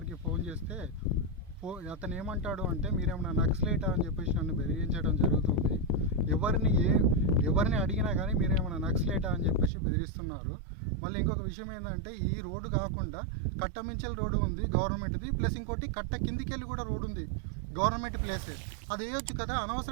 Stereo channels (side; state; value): left; drops out; at 9.7 s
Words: ఫోన్ చేస్తే అతను ఏమంటాడు అంటే మీరేమన్నా నక్సలైటా అని చెప్పేసి నన్ను బెదిరించడం జరుగుతుంది. ఎవరిని అడిగినా కానీ మీరేమన్నా నక్సలైటా అని చెప్పేసి బెదిరిస్తున్నారు. మళ్ళీ ఇంకొక విషయం ఏంటంటే ఈ రోడ్డు కాకుండా కట్టమించల్ రోడ్డు ఉంది గవర్నమెంట్ది, ప్లస్ ఇంకోటి కట్ట కిందికి వెళ్ళి కూడా రోడ్డు ఉంది గవర్నమెంట్ ప్లేసే. అది వేయొచ్చు కదా,